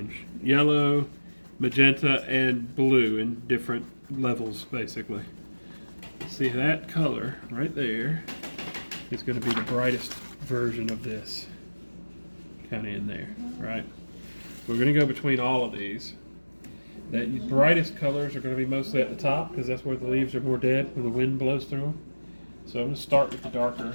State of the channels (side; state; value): both; inverted; correlation -1.00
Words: Yellow, magenta, and blue in different levels, basically. See, that color right there is going to be the brightest version of this. Kind of in there, right? We're going to go between all of these. The brightest colors are going to be mostly at the top because that's where the leaves are more dead, where the wind blows through them. So I'm going to start with the darker